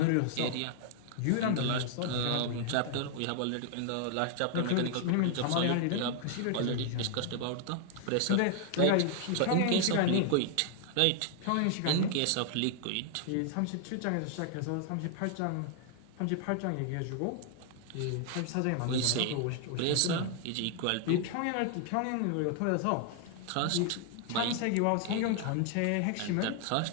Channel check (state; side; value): different; both; correlation 0.00